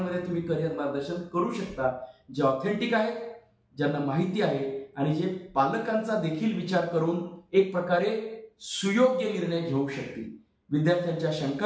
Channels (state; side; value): identical; both; correlation 1.00